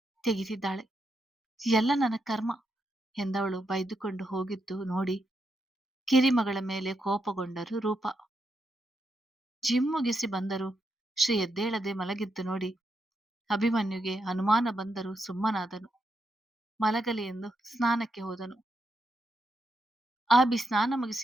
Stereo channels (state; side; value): normal; both; correlation 0.82